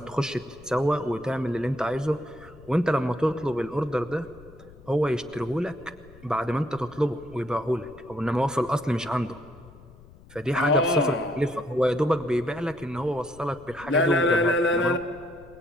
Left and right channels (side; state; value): left; noise; rumble, 21 dB below the sound